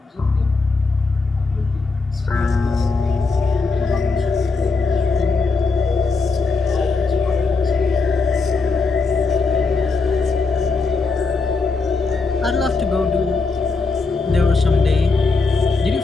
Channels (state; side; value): quieter; right; 4.1 dB